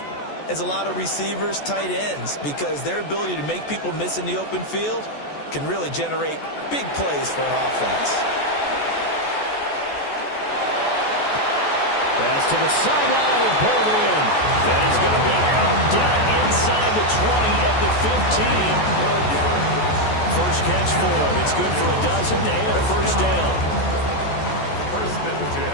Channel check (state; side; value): late; right; 14 ms